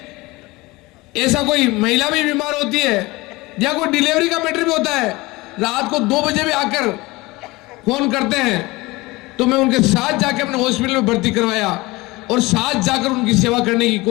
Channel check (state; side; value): quieter; right; 21.9 dB